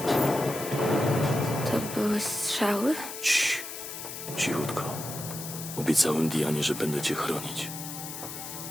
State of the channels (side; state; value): left; noise; hiss, 9 dB below the sound